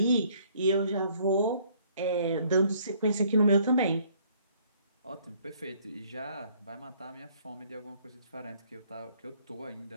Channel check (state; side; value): inverted; both; correlation -0.62